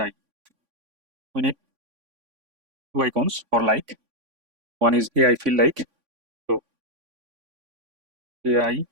We need two icons for like. One is AI feel like. So AI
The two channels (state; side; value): late; left; 3.5 ms